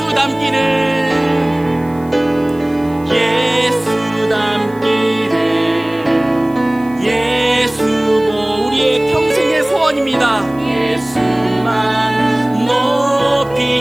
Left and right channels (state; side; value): noise; right; hiss, 27 dB below the sound